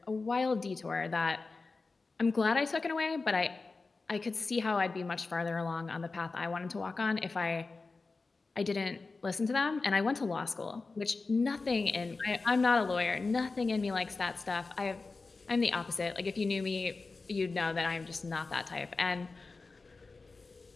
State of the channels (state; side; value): quieter; right; 3.9 dB